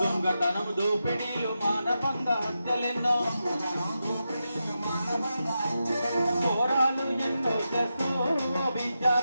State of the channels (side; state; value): both; inverted; correlation -0.88